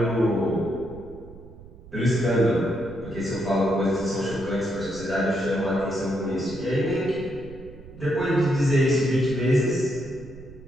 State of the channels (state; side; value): noise; right; rumble, 18 dB below the sound